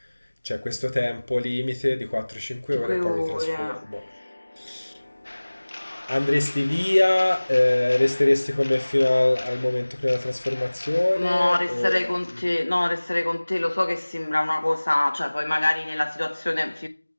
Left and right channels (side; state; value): both; inverted; correlation -1.00